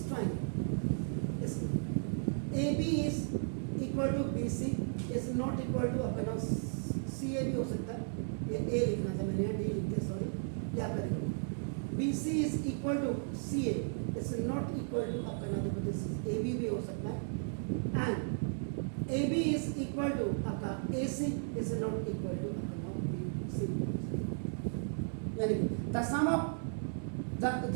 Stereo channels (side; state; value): left; silent; digital silence